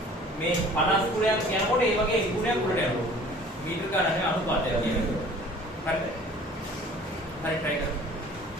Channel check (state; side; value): normal; both; correlation 0.49